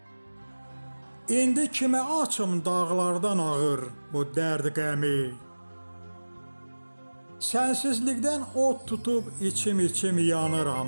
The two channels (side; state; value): both; inverted; correlation -1.00